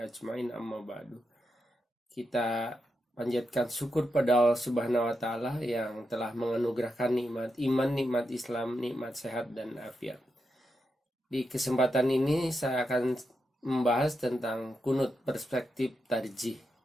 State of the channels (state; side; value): normal; both; correlation 0.86